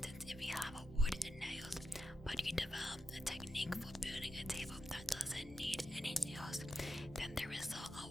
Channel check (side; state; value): both; normal; correlation 0.87